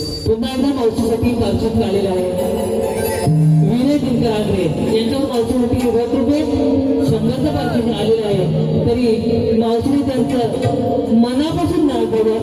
पुन्हा एकदा मावशीसाठी पार्श्वत आलेला आहे. विनय दिनकर आगरे यांच्यावर मावशीसाठी 1 रुपये 100चं पार्श्वत आलेलं आहे. तरी मावशीने त्यांचं मनापासून नाव बोलू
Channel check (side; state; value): both; identical; correlation 1.00